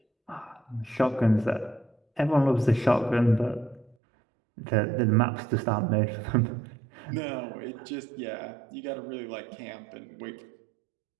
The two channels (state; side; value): drops out; left; at 4.0 s